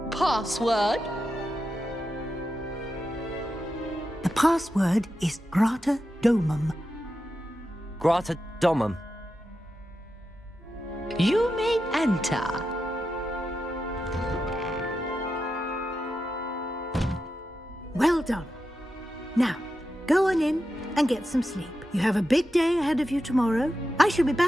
Password? The password is Grata Domum. Grata Domum. You may enter. Well done. Now, go on in and get some sleep. You have a big day ahead of you tomorrow. I shall be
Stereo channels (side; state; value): both; normal; correlation 0.89